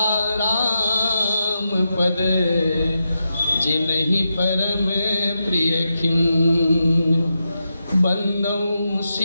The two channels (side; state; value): both; inverted; correlation -0.87